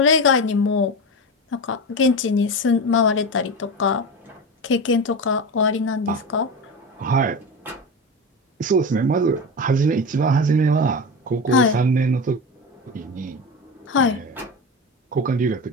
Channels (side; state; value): both; normal; correlation 0.23